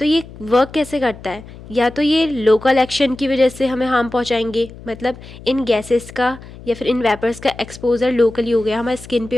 ये वर्क कैसे करता है, या तो ये लोकल एक्शन की वजह से हमें हार्म पहुंचाएंगे, मतलब इन गैसेस का या फिर इन वेपर्स का एक्सपोजर लोकली हो गया, हमारे स्किन पे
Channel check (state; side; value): noise; left; hum, 17 dB below the sound